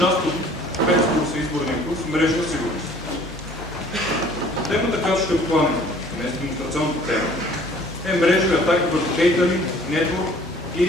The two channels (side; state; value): both; normal; correlation 0.53